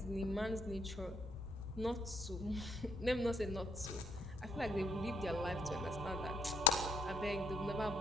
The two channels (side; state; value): both; normal; correlation 0.70